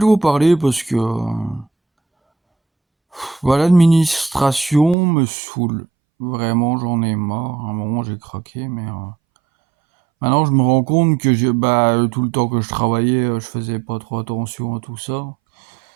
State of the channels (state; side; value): drops out; left; at 5.0 s